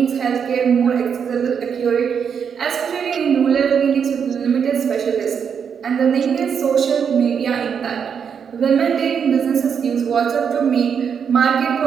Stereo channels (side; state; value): left; quieter; 7.1 dB